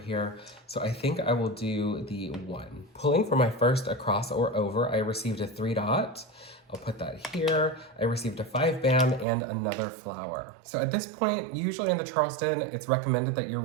So I think I will do the 1. Pulling for my first across or over, I received a 3 dot. I'll put that here. I received a 5 bam and another flower. So at this point, usually in the Charleston, it's recommended that you're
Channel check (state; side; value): drops out; left; at 9.2 s